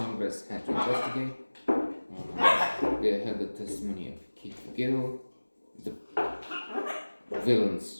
had to investigate. They had the testimony of Keith Gill, the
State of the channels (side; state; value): both; inverted; correlation -1.00